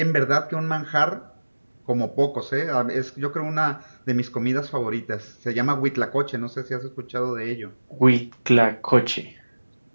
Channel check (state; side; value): inverted; both; correlation -1.00